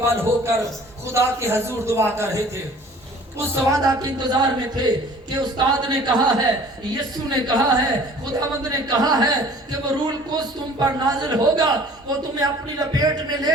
بل ہو کر خدا کے حضور دعا کر رہے تھے، اس وعدہ کے انتظار میں تھے کہ استاد نے کہا ہے، یسوع نے کہا ہے، خداوند نے کہا ہے کہ وہ روح القدس تم پر نازل ہوگا، وہ تمہیں اپنی لپیٹ میں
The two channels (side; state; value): both; normal; correlation 0.49